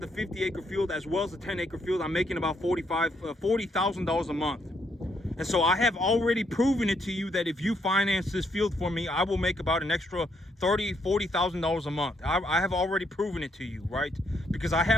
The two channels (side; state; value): both; normal; correlation 0.74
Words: field, as well as the 10-acre field, I'm making about $40,000 a month. And so I have already proven it to you that if you finance this field for me, I will make about an extra $40,000 a month. I have already proven it to you, right? Because I